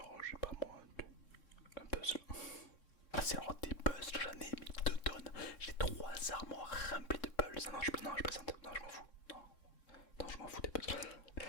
j'ai pas moi, un puzzle. Ah, c'est alors des puzzles, j'en ai mis 2 tonnes. J'ai 3 armoires remplies de puzzles. Non, je plaisante. Non, je m'en fous. Non, je m'en fous des puzzles.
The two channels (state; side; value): late; right; 3.6 ms